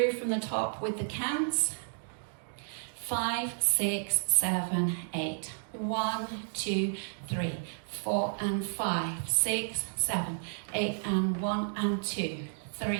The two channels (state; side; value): silent; left; digital silence